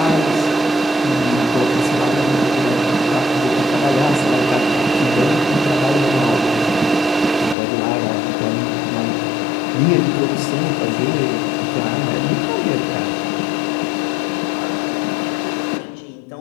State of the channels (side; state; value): right; drops out; at 7.6 s